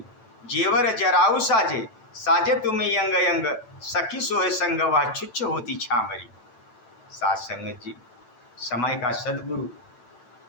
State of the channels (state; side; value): late; right; 9.0 ms